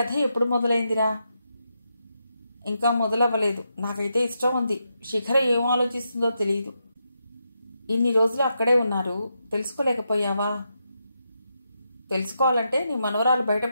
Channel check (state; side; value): inverted; both; correlation -0.84